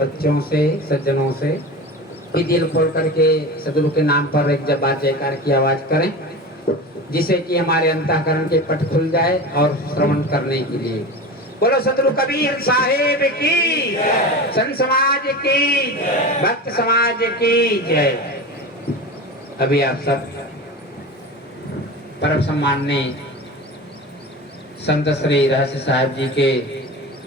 से, सज्जनों से कि दिल खोल करके सदगुरु के नाम पर एक जब बार जयकार की आवाज करें, जिससे कि हमारे अंतःकरण के पट खुल जाए और श्रवण करने के लिए। बोलो सदगुरु कबीर साहेब की, संत समाज की, भक्त समाज की जय। अभी आप सब परम सम्माननीय संत श्री रहस्य साहब जी के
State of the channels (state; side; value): normal; both; correlation 0.30